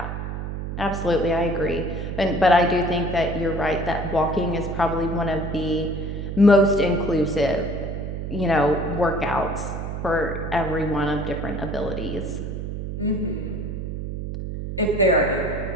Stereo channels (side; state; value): right; noise; hum, 5 dB below the sound